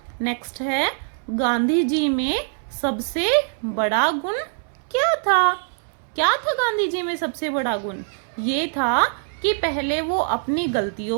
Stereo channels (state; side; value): silent; left; digital silence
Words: नेक्स्ट है गांधी जी में सबसे बड़ा गुण क्या था? क्या था गांधी जी में सबसे बड़ा गुण? ये था कि पहले वो अपनी